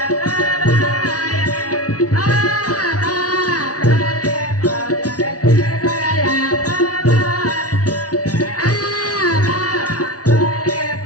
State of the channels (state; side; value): late; right; 0.68 ms